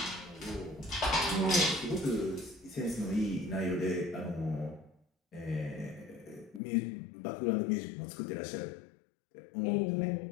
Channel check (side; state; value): right; drops out; at 6.6 s